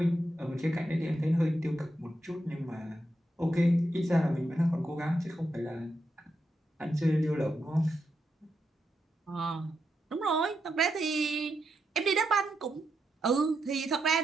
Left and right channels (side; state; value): both; normal; correlation 0.84